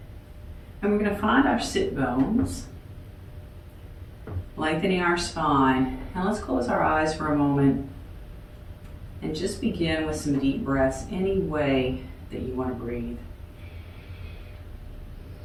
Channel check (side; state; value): both; identical; correlation 1.00